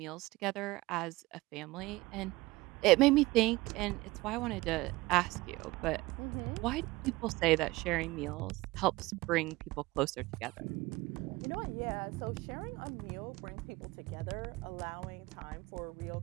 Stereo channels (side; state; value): left; quieter; 20.9 dB